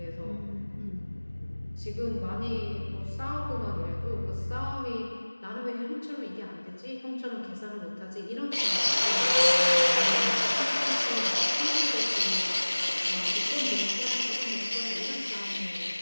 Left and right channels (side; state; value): both; inverted; correlation -1.00